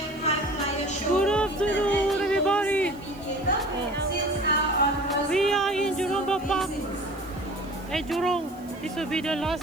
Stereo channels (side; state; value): right; noise; hiss, 27 dB below the sound